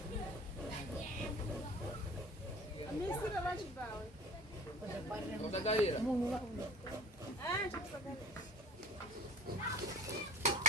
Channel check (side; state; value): both; normal; correlation 0.44